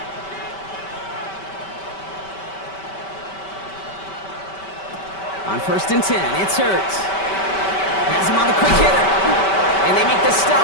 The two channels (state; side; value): late; right; 5.2 ms